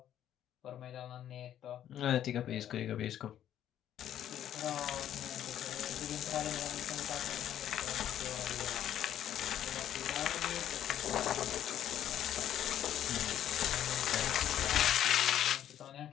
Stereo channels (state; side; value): quieter; right; 10.9 dB